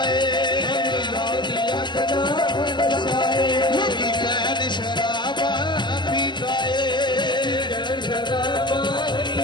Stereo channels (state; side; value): late; right; 0.21 ms